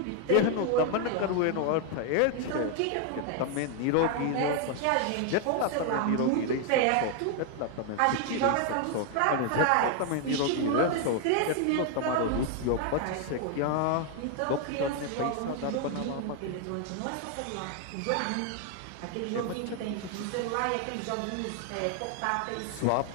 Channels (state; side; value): different; both; correlation 0.00